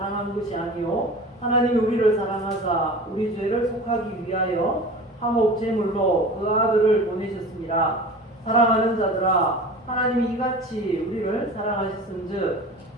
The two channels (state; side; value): normal; both; correlation 0.37